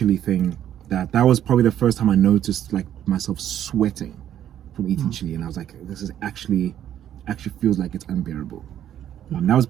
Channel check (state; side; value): quieter; left; 10.8 dB